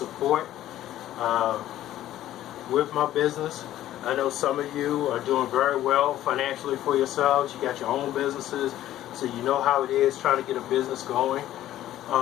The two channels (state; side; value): quieter; right; 13.3 dB